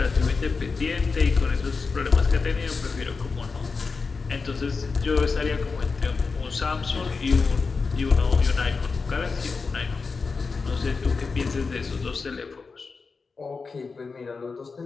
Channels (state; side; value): quieter; right; 4.6 dB